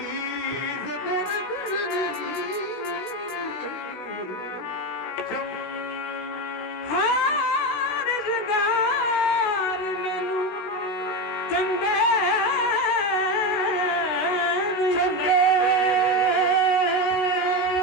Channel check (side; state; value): right; late; 16 ms